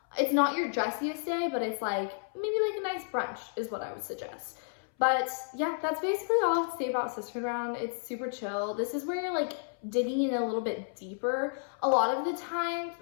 It's not your dressiest day, but it's like maybe like a nice brunch is what I would suggest. But yeah, that's basically all I have to say about Sisterhood Round. It's super chill. This is where you're like digging in a little bit deeper. A lot of the times,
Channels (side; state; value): right; silent; 57 dB below the other